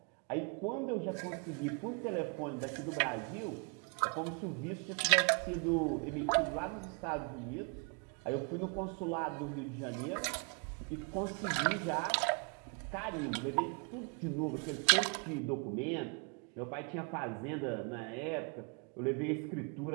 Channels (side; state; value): left; quieter; 36.3 dB